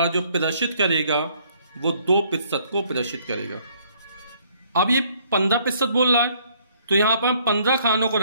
जो प्रदर्शित करेगा वो 2% को प्रदर्शित करेगा। अब ये 15% बोल रहा है, तो यहां पर हम 15 खानों को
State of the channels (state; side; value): inverted; both; correlation -0.64